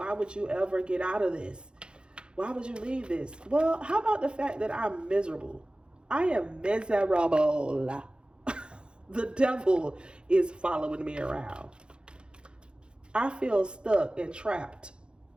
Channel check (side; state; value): left; late; 0.052 ms